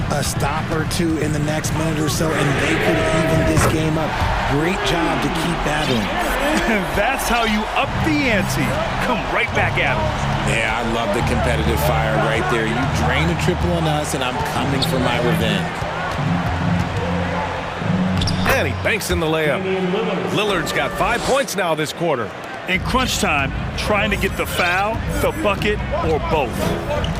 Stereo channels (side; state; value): both; identical; correlation 1.00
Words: A stop or two in the next minute or so, and they could even this game up. Great job to keep battling. And that's how you up the ante. Come right back at them. Yeah, I love the competitive fire right there. You drain a triple on us, and I'm coming for my revenge. And he banks in the layup. Lillard's got 5 points now this quarter. In crunch time, trying to get the foul, the bucket, or both.